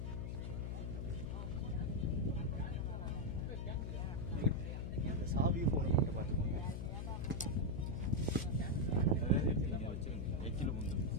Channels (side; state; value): left; noise; hum, 3 dB below the sound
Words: சாவி போன் மட்டும் பாத்துக்கோங்க. அதாவது நீங்க வச்சிருங்க. எக்கில முந்து